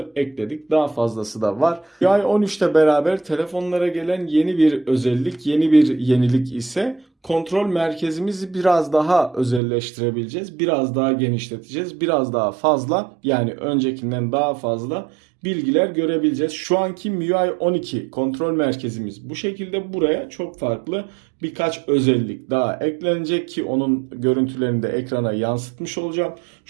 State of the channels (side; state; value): left; drops out; at 9.6 s